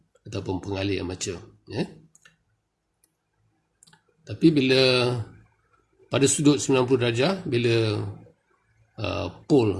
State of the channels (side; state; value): both; identical; correlation 1.00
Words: ataupun pengalih armature. Tapi bila pada sudut 90 darjah, bila pole